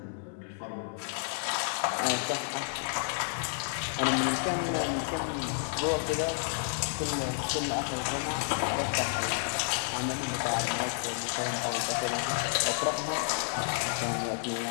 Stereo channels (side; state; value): right; silent; digital silence